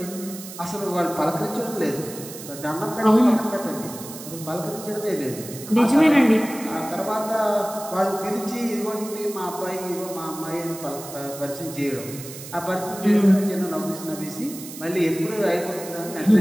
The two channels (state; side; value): noise; right; hiss, 13 dB below the sound